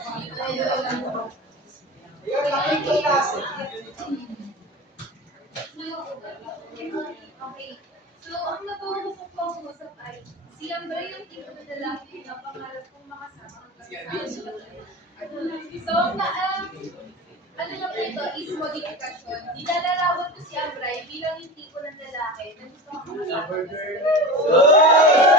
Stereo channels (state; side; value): normal; both; correlation 0.29